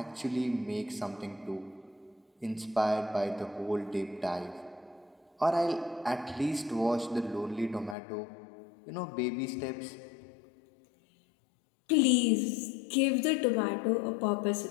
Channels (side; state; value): right; drops out; at 8.0 s